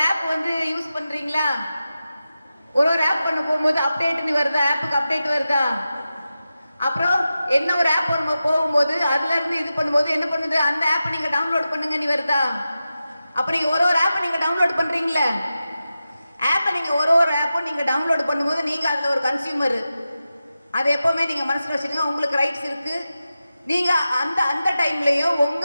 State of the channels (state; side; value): inverted; both; correlation -0.92